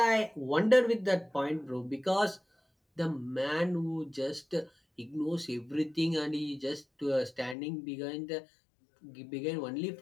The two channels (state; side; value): drops out; right; at 7.6 s